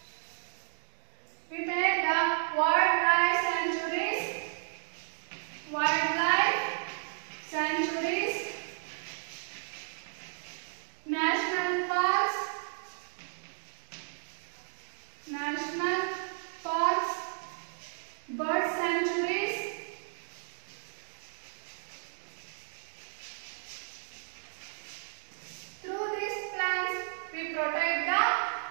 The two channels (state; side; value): silent; left; digital silence